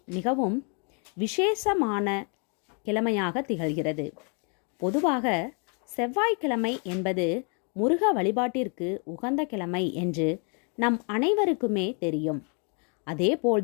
மிகவும் விசேஷமான கிழமையாக திகழ்கிறது. பொதுவாக செவ்வாய்க்கிழமை என்பது முருக வழிபாட்டிற்கு உகந்த கிழமை என்று நம் அனைவருக்குமே தெரியும்.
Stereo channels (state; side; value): quieter; right; 38.1 dB